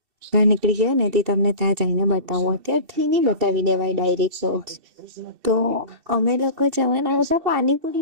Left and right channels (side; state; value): left; late; 2.7 ms